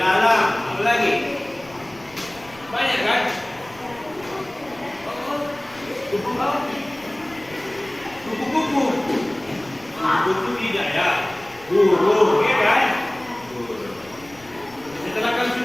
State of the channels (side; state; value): left; noise; rumble, 24 dB below the sound